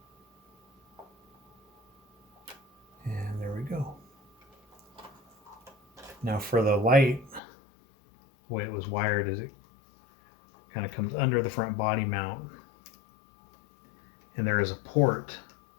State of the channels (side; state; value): right; drops out; at 7.4 s